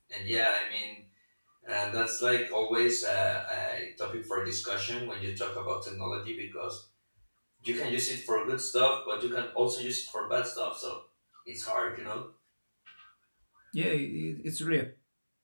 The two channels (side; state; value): both; inverted; correlation -1.00